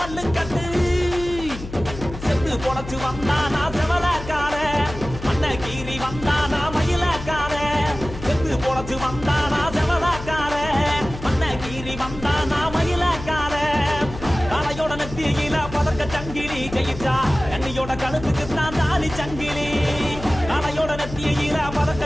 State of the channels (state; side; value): noise; left; hum, 11 dB below the sound